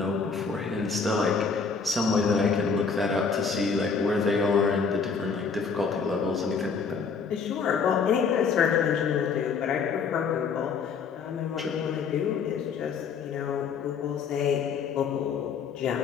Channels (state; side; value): quieter; right; 5.5 dB